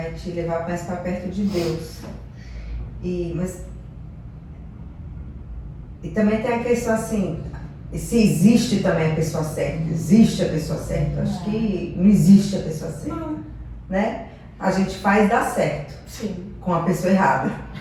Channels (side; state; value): both; identical; correlation 1.00